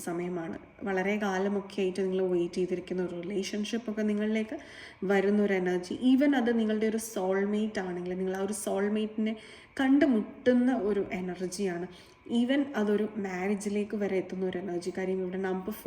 സമയമാണ്. വളരെ കാലമൊക്കെ ആയിട്ട് നിങ്ങൾ വെയിറ്റ് ചെയ്തിരിക്കുന്ന ഒരു റിലേഷൻഷിപ്പൊക്കെ നിങ്ങളിലേക്ക് വരുന്നൊരു എനർജി. ഈവൻ അത് നിങ്ങളുടെ ഒരു സോൾമേറ്റ് ആണെങ്കിൽ നിങ്ങൾ ആ ഒരു സോൾമേറ്റിനെ കണ്ടുമുട്ടുന്ന ഒരു എനർജിയാണ്. ഈവൻ അതൊരു മാരേജിലേക്ക് വരെ എത്തുന്ന ഒരു എനർജി. കാര്യം ഇവിടെ നമ്പർ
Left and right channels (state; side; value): identical; both; correlation 1.00